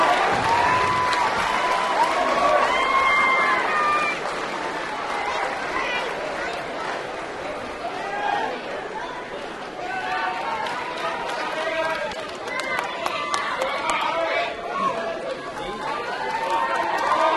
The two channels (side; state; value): both; identical; correlation 1.00